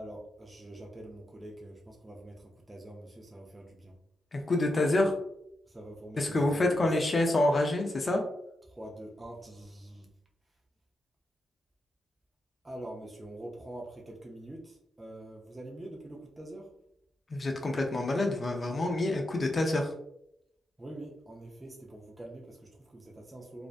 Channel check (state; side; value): normal; both; correlation 0.86